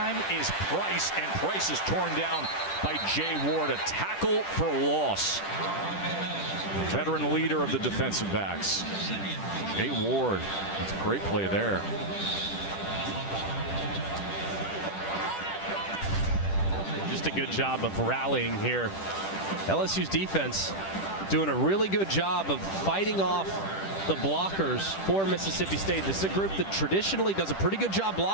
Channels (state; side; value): late; right; 10 ms